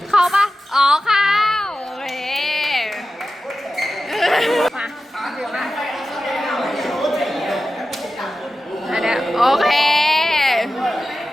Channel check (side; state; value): both; normal; correlation 0.93